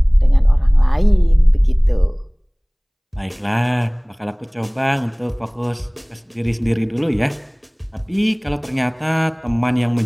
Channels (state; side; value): identical; both; correlation 1.00